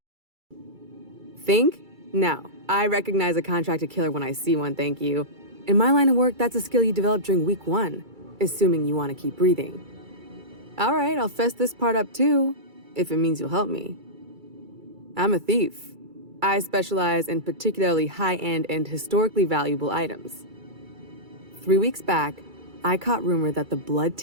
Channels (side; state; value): left; late; 2.3 ms